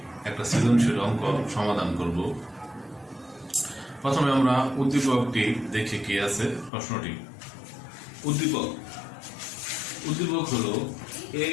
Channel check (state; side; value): drops out; right; at 6.7 s